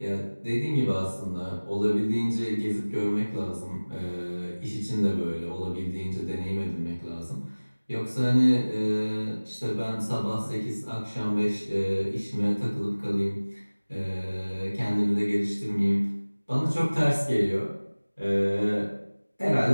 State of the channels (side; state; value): both; inverted; correlation -1.00